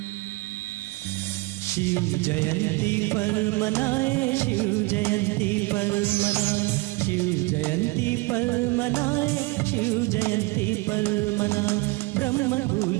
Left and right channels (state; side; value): quieter; left; 23.7 dB